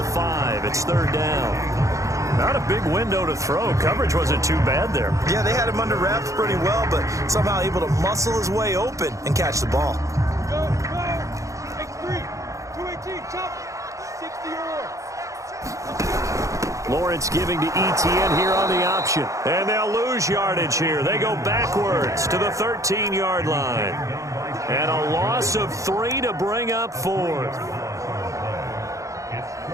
5. It's 3rd down. Not a big window to throw. Coverage wasn't too bad there. Yeah, they had him under wraps pretty well, but somehow able to muscle his way open and catch the ball. Go, go. X3. 218. Chop. 60 or more. Lawrence giving to Etienne here on the option. And they'll lose yardage here. They go backwards to the 13-yard line. And a loss of 3 to bring up 4th.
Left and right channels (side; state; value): left; late; 0.15 ms